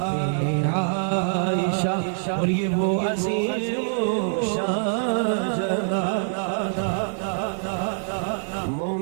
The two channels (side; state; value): left; silent; digital silence